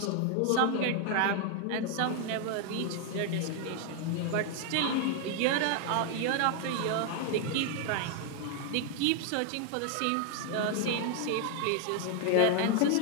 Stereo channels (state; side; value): different; both; correlation 0.00